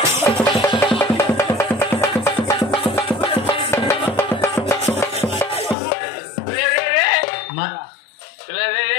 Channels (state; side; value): drops out; right; at 5.8 s